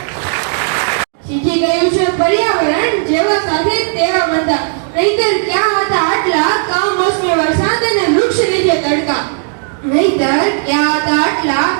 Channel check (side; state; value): left; silent; digital silence